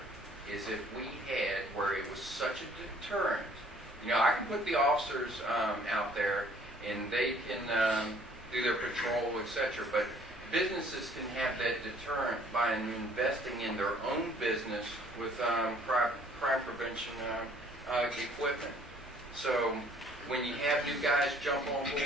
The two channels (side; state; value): both; normal; correlation 0.58